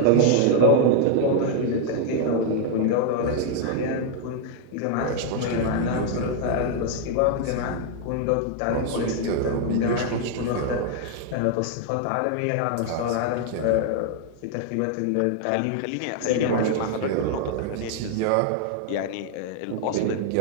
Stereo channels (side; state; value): both; different; correlation 0.00